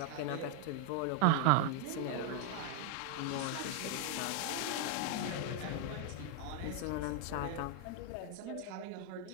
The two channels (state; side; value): different; both; correlation 0.00